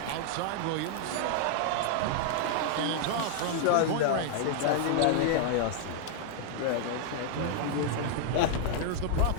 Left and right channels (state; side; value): different; both; correlation -0.01